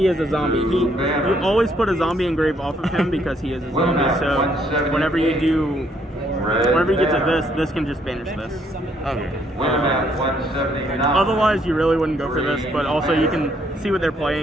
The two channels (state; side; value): normal; both; correlation 0.69